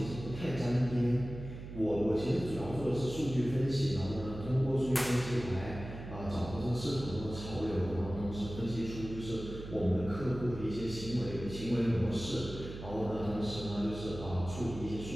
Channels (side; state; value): right; noise; hum, 10 dB below the sound